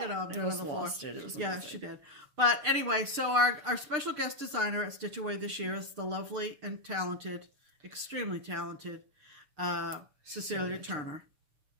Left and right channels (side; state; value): left; late; 6.7 ms